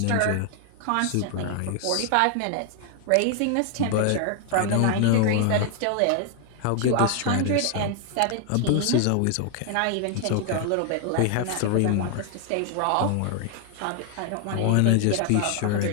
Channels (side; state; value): both; different; correlation 0.00